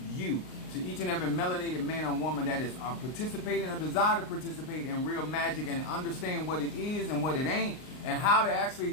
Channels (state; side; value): late; right; 39 ms